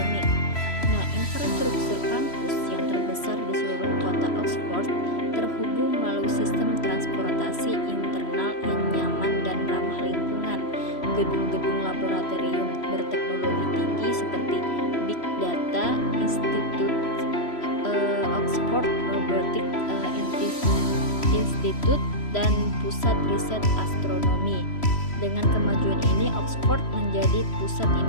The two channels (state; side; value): late; right; 3.0 ms